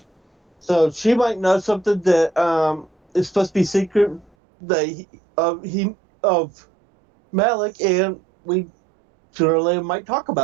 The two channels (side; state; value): left; drops out; at 4.3 s